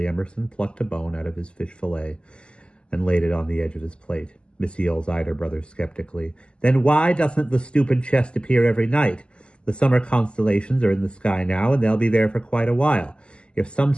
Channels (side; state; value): right; late; 0.051 ms